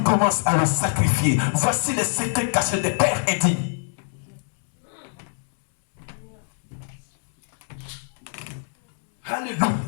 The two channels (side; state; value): right; silent; 63 dB below the other